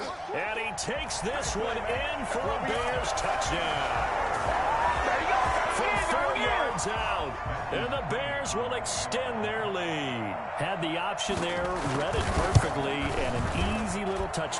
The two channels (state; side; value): identical; both; correlation 1.00